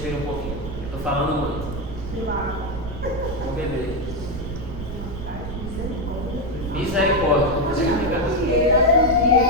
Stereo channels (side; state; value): right; noise; rumble, 8 dB below the sound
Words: um pouquinho. Eu estou falando muito. Vou beber. Misericórdia.